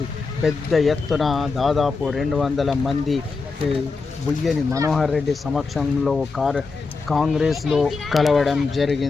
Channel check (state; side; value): quieter; right; 4.3 dB